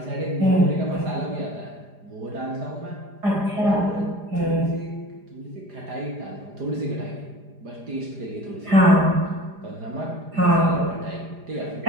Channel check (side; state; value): left; late; 4.9 ms